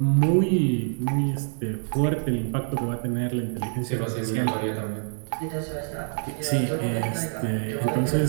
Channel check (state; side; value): silent; left; 61 dB below the other